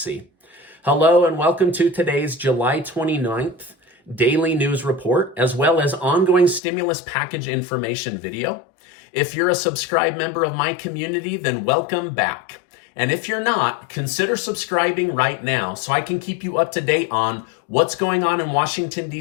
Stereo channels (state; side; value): drops out; right; at 6.6 s